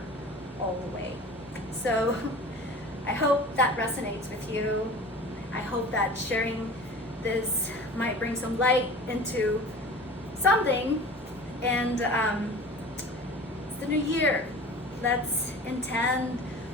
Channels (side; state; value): both; normal; correlation 0.39